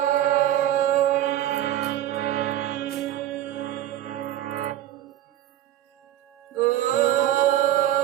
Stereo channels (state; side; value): quieter; left; 12.5 dB